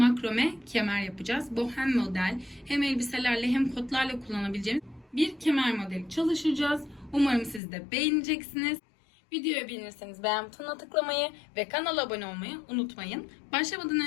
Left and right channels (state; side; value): drops out; right; at 7.6 s